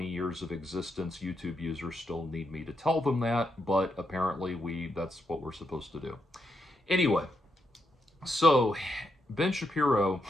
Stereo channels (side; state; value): both; normal; correlation 0.81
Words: years of existence, YouTube users still need me to tell them that, but apparently that's what we're supposed to do. Anyway, so Ben Shapiro